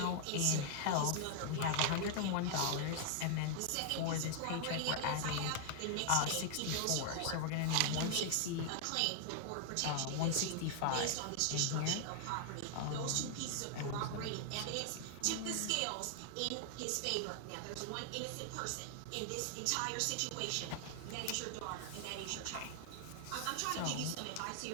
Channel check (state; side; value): different; both; correlation 0.00